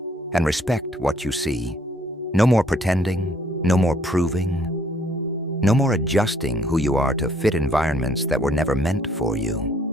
and respect what you see. No more pretending, no more proving, no more adjusting who you are to fit environments that were never meant for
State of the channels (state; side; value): normal; both; correlation 0.64